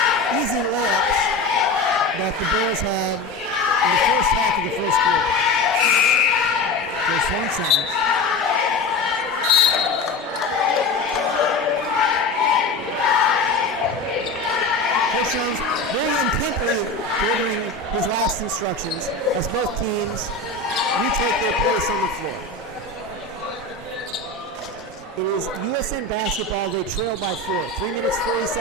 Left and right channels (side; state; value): right; quieter; 3.3 dB